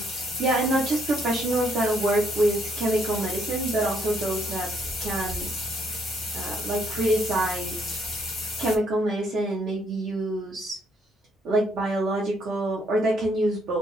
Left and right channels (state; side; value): normal; both; correlation 0.70